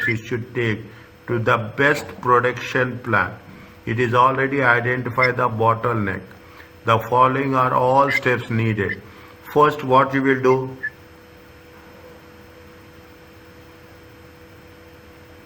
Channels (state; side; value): identical; both; correlation 1.00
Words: it should take to the best production plan. It is already identified the bottleneck. The following are all steps needed. First, what you will do?